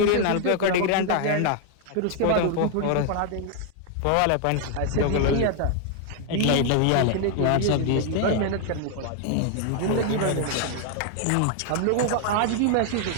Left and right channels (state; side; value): different; both; correlation 0.00